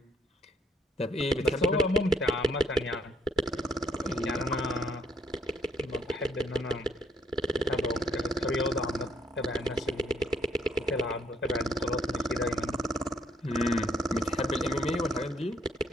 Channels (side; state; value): both; normal; correlation 0.71